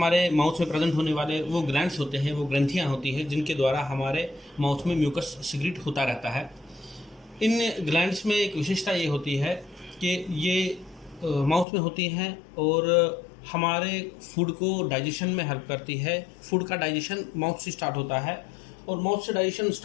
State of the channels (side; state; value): right; drops out; at 11.7 s